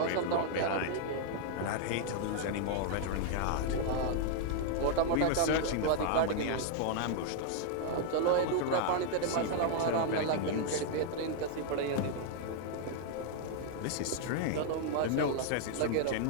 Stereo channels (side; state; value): both; different; correlation 0.00